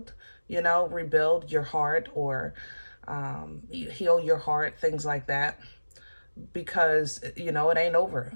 you know, rebuild your heart, or heal your heart, things like that, because, you know, it ain't over,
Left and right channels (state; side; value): inverted; both; correlation -1.00